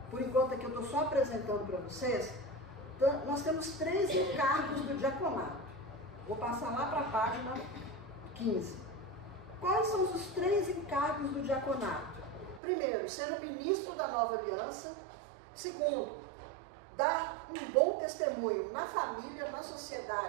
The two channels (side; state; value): left; drops out; at 12.6 s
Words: por enquanto aqui eu estou só apresentando para vocês, nós temos 3 encargos do diaconato. Vou passar lá para a página 15. Quais são os 3 encargos do diaconato? Primeiro, ser o ministro da nova aliança. Segundo, dar um bom testemunho na família, na